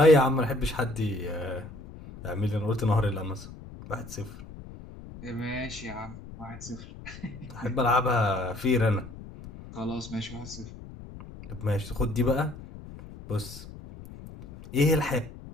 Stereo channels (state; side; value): noise; left; rumble, 15 dB below the sound